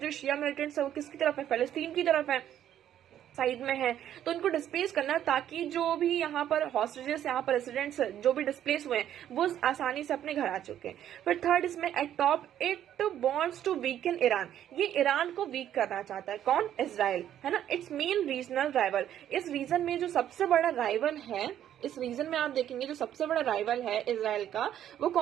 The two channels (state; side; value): quieter; left; 10.9 dB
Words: शिया मिलिटेंट्स है वो किसकी तरफ है, फलस्तीन की तरफ है, साइड में है। तो उनको डिस्प्लेस करना, ताकि जो भी यहाँ पर हॉस्टेजेस, यहाँ पर रेसिडेंट्स जो भी डिस्प्लेस हुए हैं वो आसानी से अपने घर आ चुके हैं। फिर थर्ड इसमें at top it wants to weaken Iran. ये ईरान को वीक करना चाहता है, कौन, इजराइल, है ना। It's main regional rival. इस रीजन में जो सबसे बड़ा राइवल है, इस रीजन में आप देखेंगे जो सबसे बड़ा राइवल है इजराइल का, वो